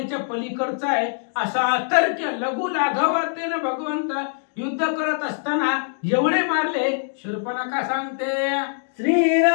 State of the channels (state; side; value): silent; right; digital silence